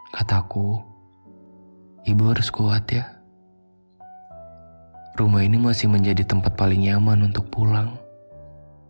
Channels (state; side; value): inverted; both; correlation -1.00